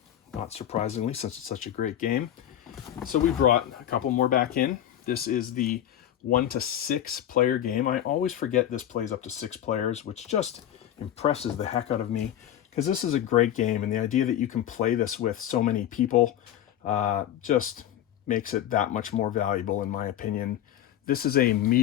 not surprisingly, since it's such a great game. So we brought a couple more back in. This is the 1 to 6 player game. I always forget this plays up to 6 players, which just impresses the heck out of me, because this is a great game, and the idea that you can play this with so many people just makes it that much more valuable, in my opinion. This is a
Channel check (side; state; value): right; quieter; 11.2 dB